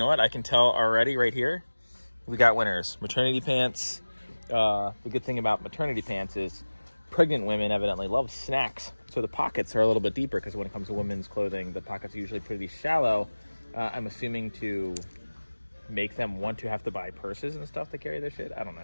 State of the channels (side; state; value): both; inverted; correlation -1.00